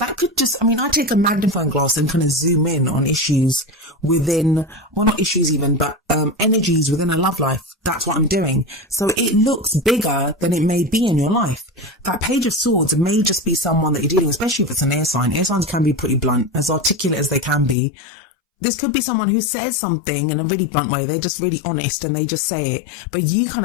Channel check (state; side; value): drops out; right; at 17.8 s